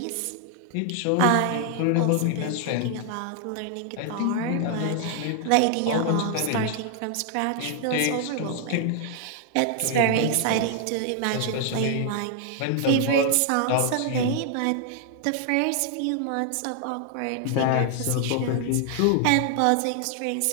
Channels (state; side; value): different; both; correlation 0.00